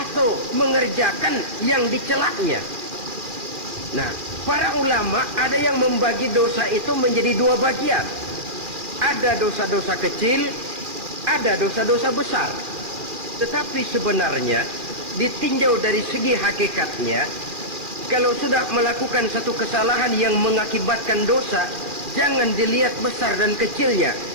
mengerjakan yang dicelaknya. Nah, para ulama ada yang membagi dosa itu menjadi dua bagian. Ada dosa-dosa kecil, ada dosa-dosa besar. Tetapi sebenarnya ditinjau dari segi hakikatnya, kalau sudah melakukan satu kesalahan yang mengakibatkan dosa, jangan dilihat besar dan kecilnya,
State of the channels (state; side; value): late; left; 2.4 ms